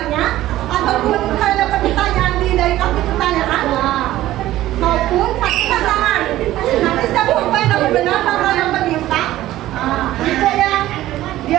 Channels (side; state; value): left; quieter; 14.9 dB